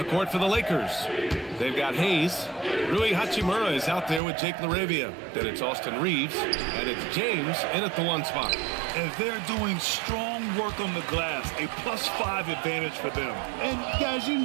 court for the Lakers, they've got Hayes. Rui Hachimura is out there with Jake Laravia. Then it's Austin Reeves, and it's James in at the 1 spot. And they're doing strong work on the glass, a +5 advantage for them. And guys, you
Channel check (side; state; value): left; drops out; at 4.2 s